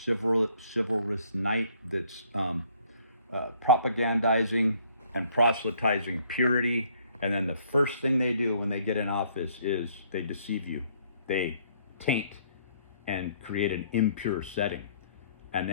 chivalrous knight that's propagandizing and proselytizing purity, and then the first thing they do when they get in office is they deceive you. They taint and create an impure setting, and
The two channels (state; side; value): inverted; both; correlation -0.63